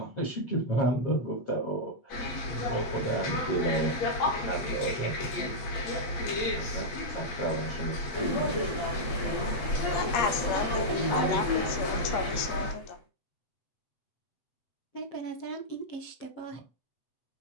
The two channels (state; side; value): late; right; 8.5 ms